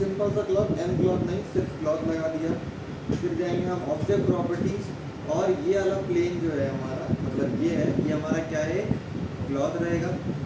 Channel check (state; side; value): identical; both; correlation 1.00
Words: सा क्लॉथ, एम क्लॉथ नहीं, सिर्फ क्लॉथ लगा दिया। फिर जाएंगे हम ऑब्जेक्ट प्रॉपर्टीज, और ये वाला प्लेन जो है हमारा, मतलब ये है, ये हमारा क्या है, क्लॉथ रहेगा।